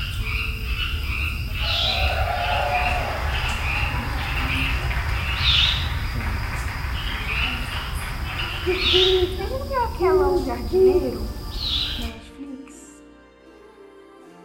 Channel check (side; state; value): both; identical; correlation 1.00